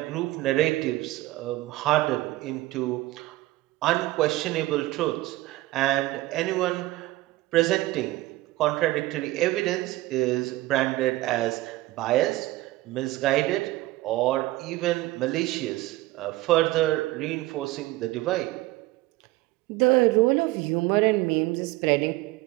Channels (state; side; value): quieter; left; 18.3 dB